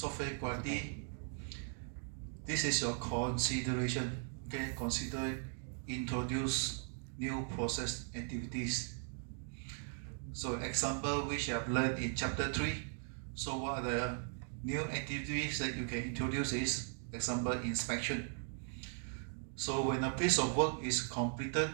quality, this is your consideration. Okay, consider introduce new process activities. So example which I have learned in chapter 3. So what are the new activities that you can introduce is, example, inspection. So when a piece of work is completed,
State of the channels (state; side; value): silent; left; 52 dB below the other